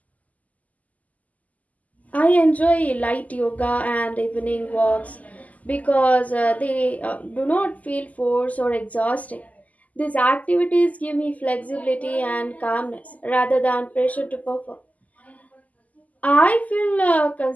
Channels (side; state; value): right; late; 0.075 ms